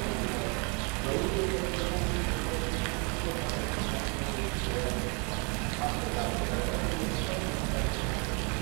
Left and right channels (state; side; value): quieter; left; 34.1 dB